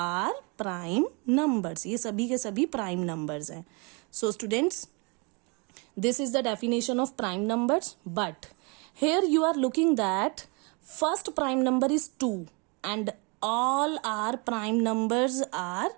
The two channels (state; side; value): quieter; left; 31.4 dB